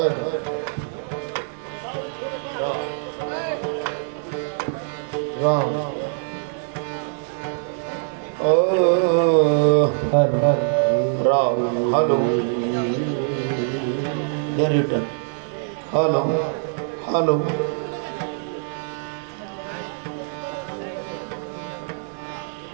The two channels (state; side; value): silent; left; 63 dB below the other